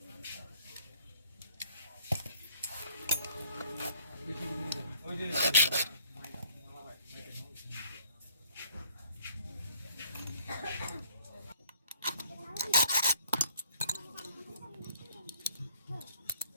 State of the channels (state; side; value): inverted; both; correlation -0.61